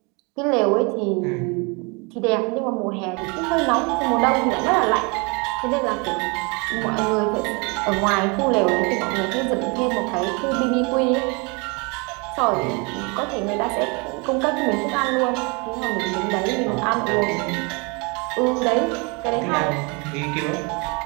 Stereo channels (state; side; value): quieter; left; 30.5 dB